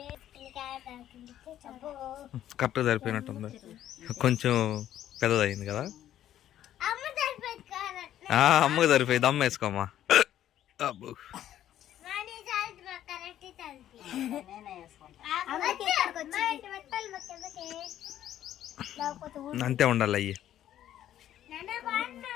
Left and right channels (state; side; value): quieter; right; 11.8 dB